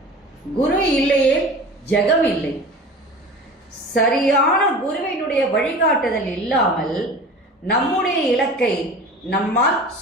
குரு இல்லையே ஜெகம் இல்லை. சரியான குருவினுடைய வழிகாட்டுதல் இல்லாமல் நம்முடைய இலக்கை நம்மால்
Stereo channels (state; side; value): normal; both; correlation 0.37